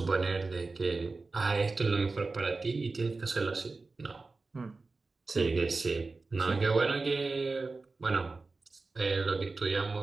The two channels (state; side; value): quieter; left; 3.7 dB